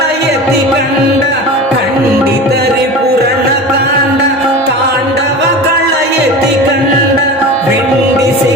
కండ, ఖండిత రిపురన కాండ తాండవ కళయతి కండ. వెండి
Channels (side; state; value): both; normal; correlation 0.32